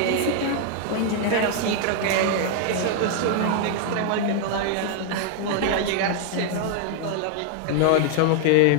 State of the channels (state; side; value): different; both; correlation 0.00